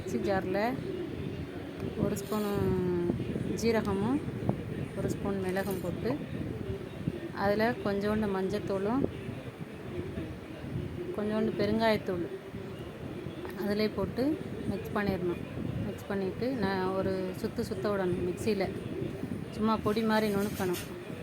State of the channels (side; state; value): both; identical; correlation 1.00